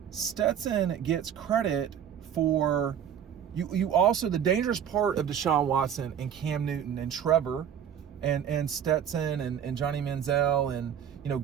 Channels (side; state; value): left; quieter; 8.9 dB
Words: Stetson gets credit for you also, the dangerous part of Deshaun Watson and Cam Newton and Trevor and Stetson and Johnny Manziel and